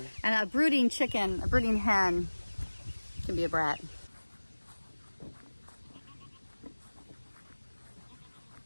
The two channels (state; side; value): inverted; both; correlation -1.00